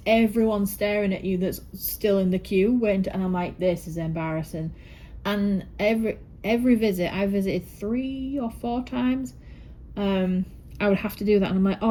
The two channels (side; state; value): both; identical; correlation 1.00